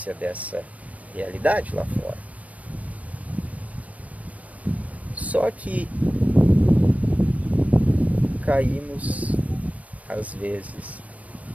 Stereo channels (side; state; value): left; late; 0.070 ms